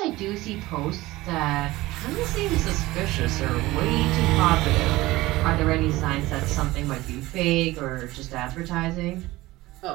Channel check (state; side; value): quieter; left; 18.8 dB